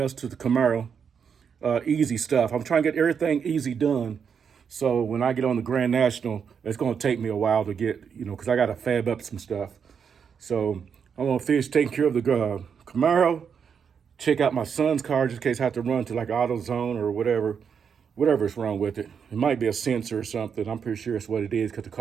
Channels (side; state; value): left; quieter; 6.9 dB